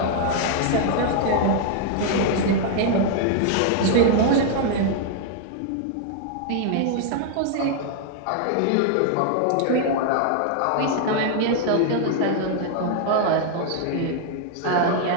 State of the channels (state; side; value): different; both; correlation -0.01